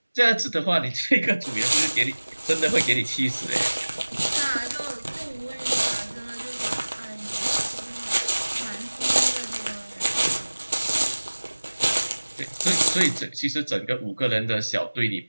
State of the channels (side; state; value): both; inverted; correlation -1.00